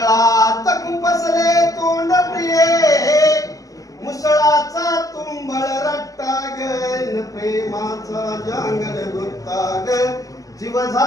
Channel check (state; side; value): late; right; 0.17 ms